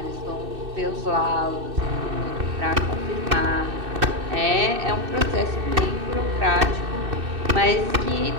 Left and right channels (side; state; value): left; late; 2.6 ms